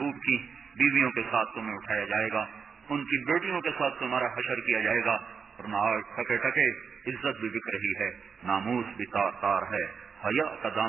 کی بیویوں کے ساتھ تمہیں اٹھایا جائے گا، ان کی بیٹیوں کے ساتھ تمہارا حشر کیا جائے گا، ورنہ آج ٹکے ٹکے عزت بھی بک رہی ہے، ناموس بھی تار تار ہے، حیا کا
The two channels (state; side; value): quieter; left; 6.0 dB